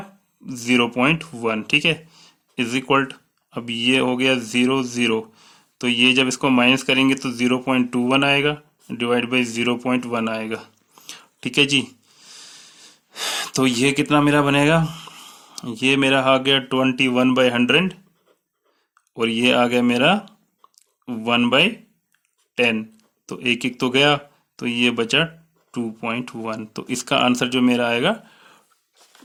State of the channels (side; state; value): both; identical; correlation 1.00